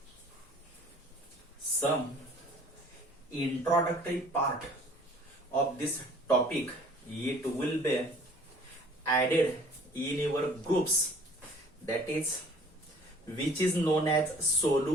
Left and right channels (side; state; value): both; normal; correlation 0.52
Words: Some introductory part of this topic, it will be added in your groups, that is which is known as